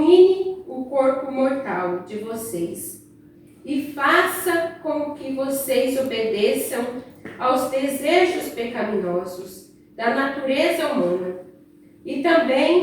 o corpo mortal de vocês, e faça com que vocês obedeçam aos desejos pecaminosos da natureza humana. E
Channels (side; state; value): both; identical; correlation 1.00